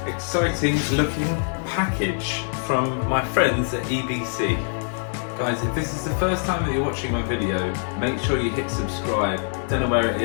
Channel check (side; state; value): right; silent; digital silence